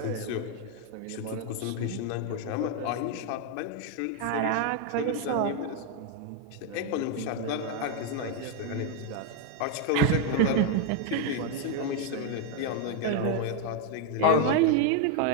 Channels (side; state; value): both; different; correlation 0.01